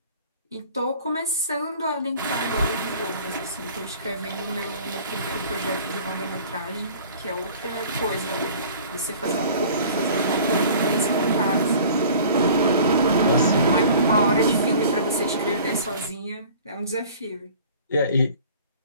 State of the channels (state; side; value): inverted; both; correlation -0.46